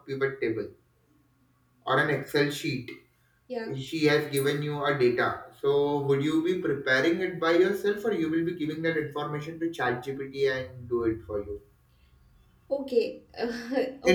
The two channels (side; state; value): both; identical; correlation 1.00